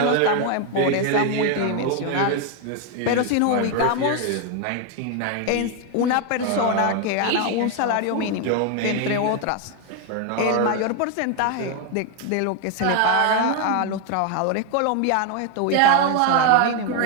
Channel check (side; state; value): both; different; correlation 0.01